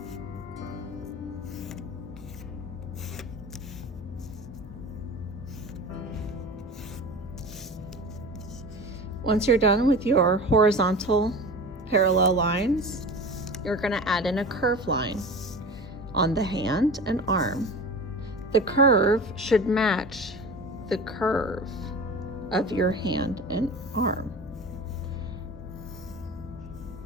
Once you're done with your horizontal parallel lines, you're going to add in a curved line on the hand and arm. The curve should match the curve of your hand and arm.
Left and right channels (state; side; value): normal; both; correlation 0.34